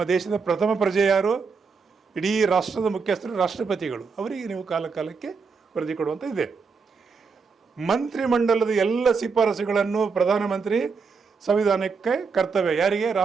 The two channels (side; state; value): left; quieter; 5.1 dB